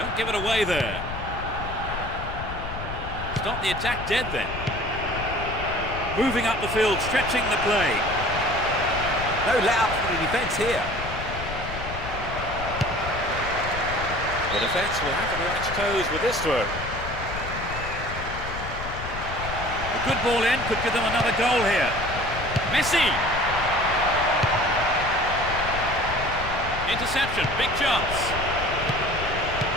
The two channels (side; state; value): left; noise; rumble, 8 dB below the sound